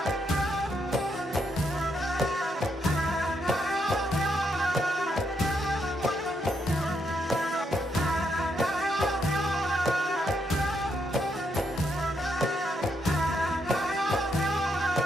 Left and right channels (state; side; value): normal; both; correlation 0.78